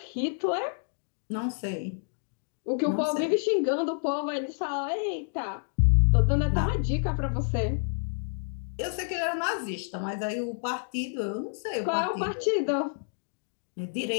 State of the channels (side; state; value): right; silent; digital silence